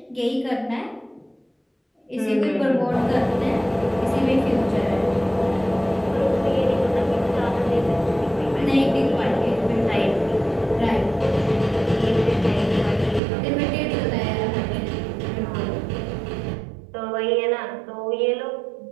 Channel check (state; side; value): drops out; left; at 13.2 s